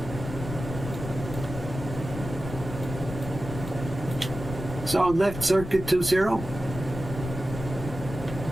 So left circuit 20.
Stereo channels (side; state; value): left; noise; rumble, 8 dB below the sound